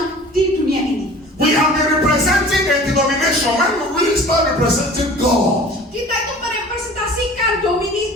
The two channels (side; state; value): both; normal; correlation 0.44